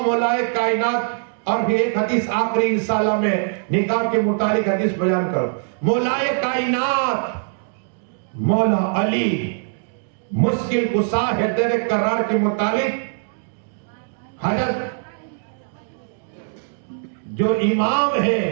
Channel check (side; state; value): left; silent; digital silence